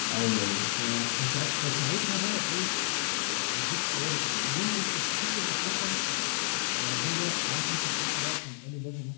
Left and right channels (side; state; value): right; silent; digital silence